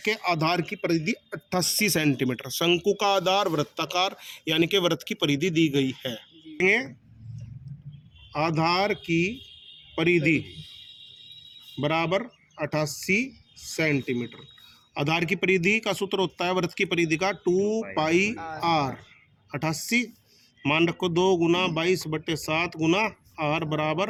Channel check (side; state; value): both; identical; correlation 1.00